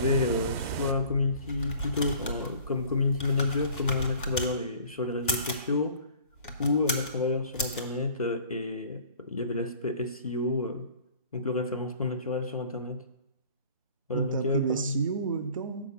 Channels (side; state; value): both; inverted; correlation -0.49